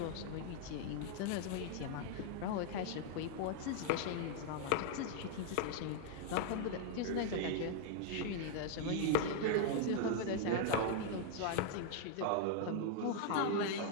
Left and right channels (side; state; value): both; different; correlation 0.00